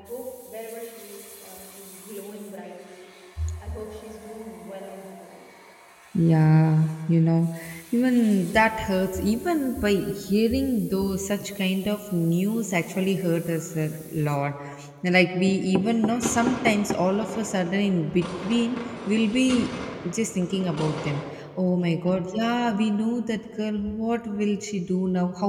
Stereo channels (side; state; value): both; identical; correlation 1.00